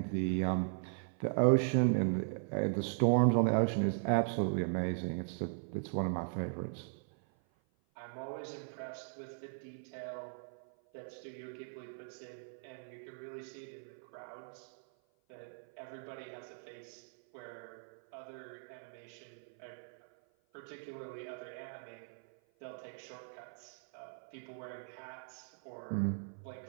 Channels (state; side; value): silent; left; 52 dB below the other